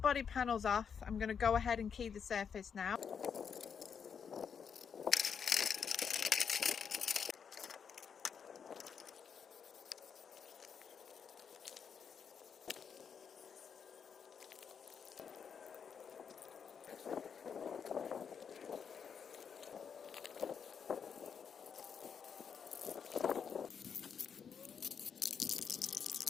panels off. I'm going to go ahead and key the surface now.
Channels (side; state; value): right; quieter; 6.9 dB